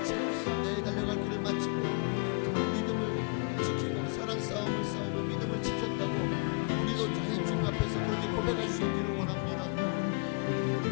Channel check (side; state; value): right; quieter; 37.1 dB